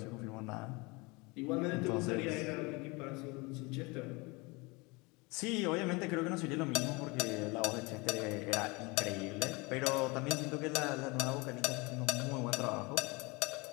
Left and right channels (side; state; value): right; quieter; 26.2 dB